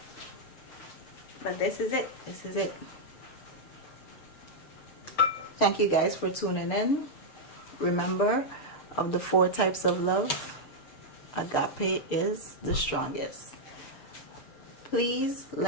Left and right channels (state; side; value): late; right; 6.8 ms